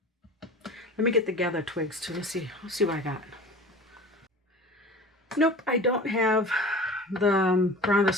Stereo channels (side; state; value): both; normal; correlation 0.38